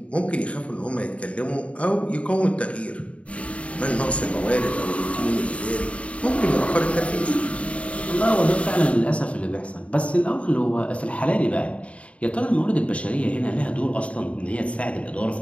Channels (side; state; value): right; late; 0.064 ms